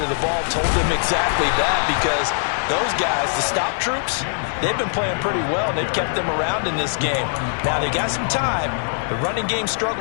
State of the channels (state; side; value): silent; right; 65 dB below the other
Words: of the ball told them exactly that, because those guys, the stop troops, they've been playing pretty well, and they've kept them around in this game. Now, they got some time. The running game